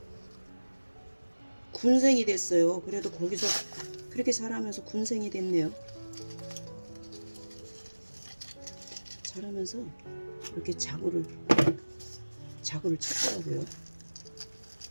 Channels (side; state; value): both; inverted; correlation -1.00